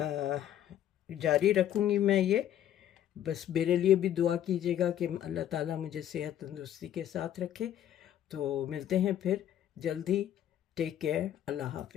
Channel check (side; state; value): right; quieter; 11.1 dB